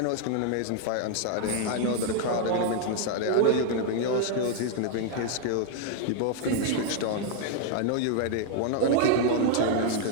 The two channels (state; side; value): different; both; correlation 0.00